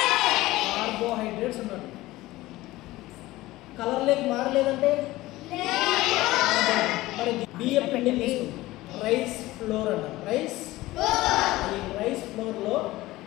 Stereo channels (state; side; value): quieter; right; 18.0 dB